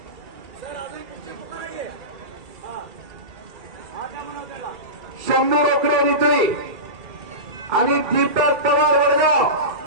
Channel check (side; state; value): left; late; 2.3 ms